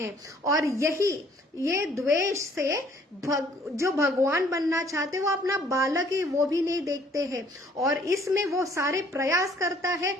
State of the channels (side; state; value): both; normal; correlation 0.60